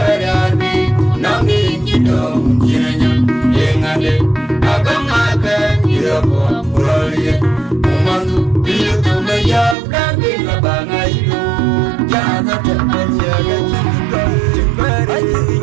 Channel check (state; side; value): drops out; left; at 9.8 s